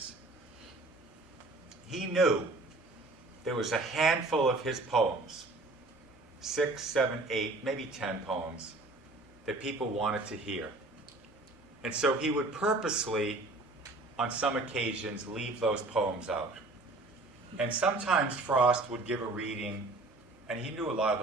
he knew there was a handful of his poems, 6, 7, 8, maybe 10 poems, that people wanted to hear. And so he would purposely, on some occasions, leave those poems out. And sometimes Frost would give a reading, and he knew a lot of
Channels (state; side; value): quieter; left; 3.0 dB